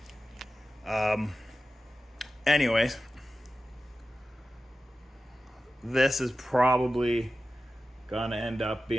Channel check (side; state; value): both; normal; correlation 0.94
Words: Anyways, this is probably gonna end up